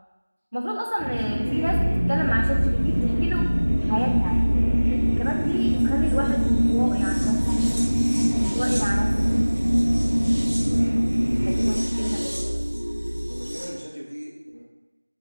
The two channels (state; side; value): inverted; both; correlation -1.00